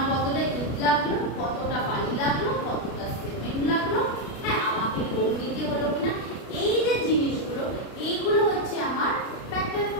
কতটা ইট লাগলো, কতটা বালি লাগলো, কতটা সিমেন্ট লাগলো, হ্যাঁ আমাকে লোন নিতে হলো কিনা, এই যে জিনিসগুলো, এইগুলো হচ্ছে আমার ফ্যাক্টর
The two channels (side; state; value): right; late; 33 ms